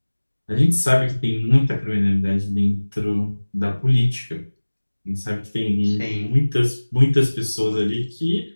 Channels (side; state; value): both; inverted; correlation -1.00